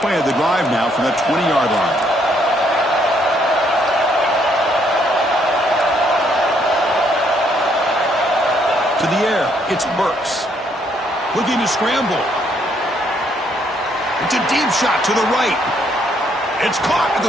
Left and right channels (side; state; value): both; normal; correlation 0.70